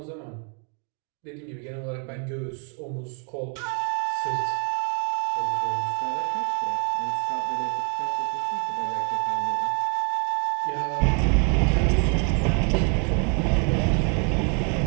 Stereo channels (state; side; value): quieter; left; 38.4 dB